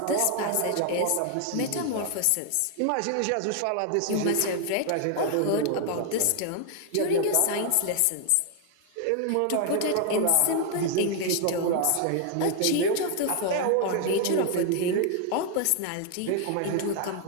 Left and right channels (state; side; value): different; both; correlation 0.00